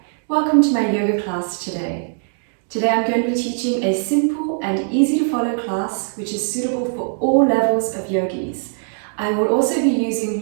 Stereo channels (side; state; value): left; silent; digital silence